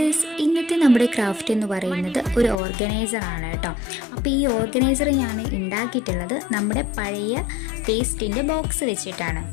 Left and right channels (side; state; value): right; drops out; at 2.6 s